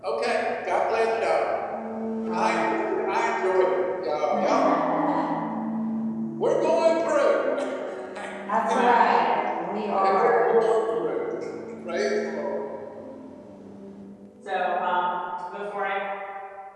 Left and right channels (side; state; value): both; identical; correlation 1.00